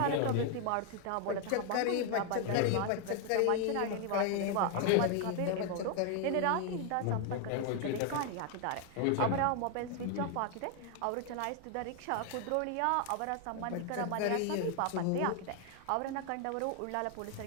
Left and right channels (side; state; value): both; different; correlation 0.00